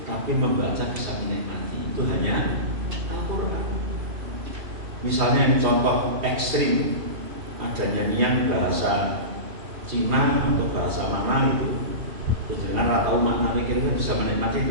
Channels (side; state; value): left; late; 2.8 ms